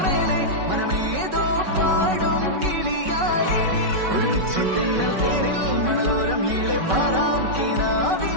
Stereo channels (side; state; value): left; late; 5.2 ms